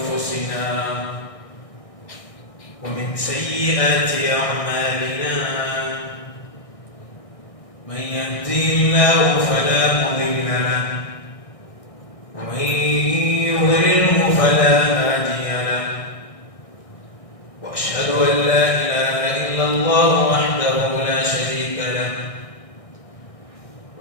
ومن سيئات أعمالنا من يهدي الله فلا مضل له ومن يضلله فلا هادي له وأشهد أن لا إله إلا الله وحده لا شريك له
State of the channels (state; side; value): late; right; 1.6 ms